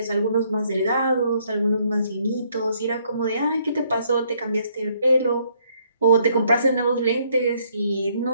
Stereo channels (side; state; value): both; inverted; correlation -0.69